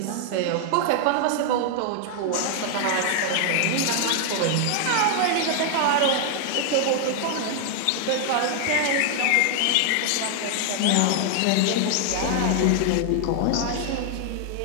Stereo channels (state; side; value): different; both; correlation 0.00